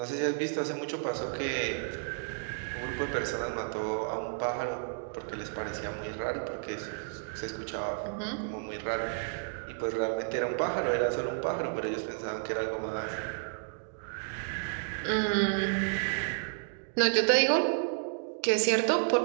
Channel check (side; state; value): left; silent; digital silence